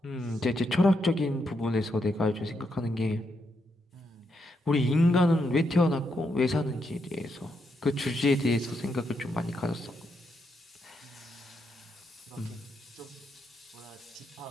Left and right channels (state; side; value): normal; both; correlation 0.81